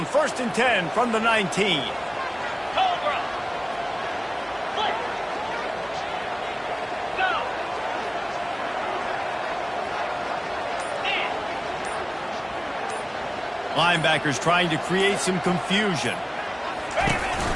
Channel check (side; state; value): both; identical; correlation 1.00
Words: 1st and 10 from the 19. Cobra. Flip. Go. In. Linebackers trying to create some confusion. Ready, ready.